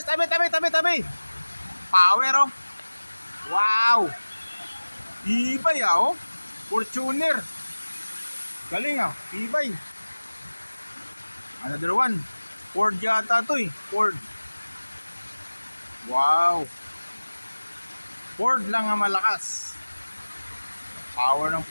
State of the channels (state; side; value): inverted; both; correlation -1.00